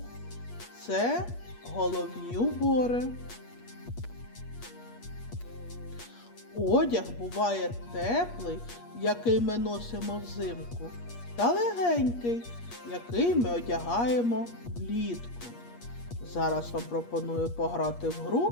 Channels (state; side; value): late; right; 8.4 ms